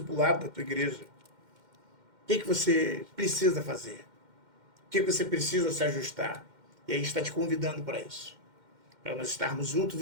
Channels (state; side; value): late; left; 2.1 ms